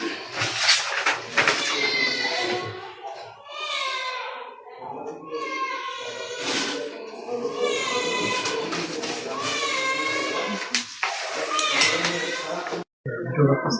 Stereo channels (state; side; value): identical; both; correlation 1.00